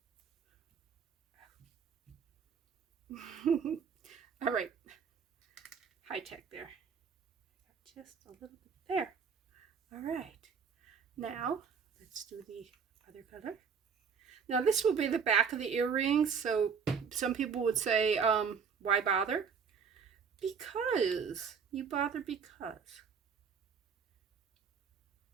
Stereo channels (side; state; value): left; quieter; 6.3 dB